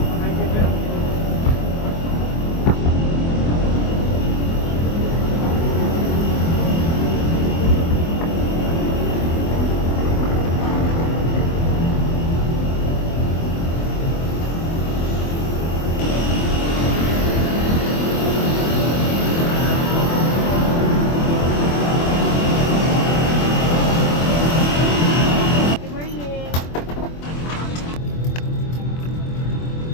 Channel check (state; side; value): late; right; 24 ms